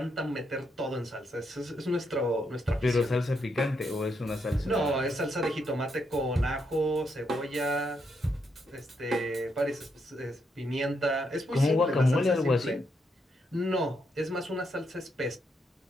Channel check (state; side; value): normal; both; correlation 0.79